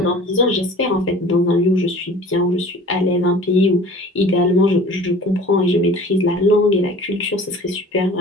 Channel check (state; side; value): normal; both; correlation 0.44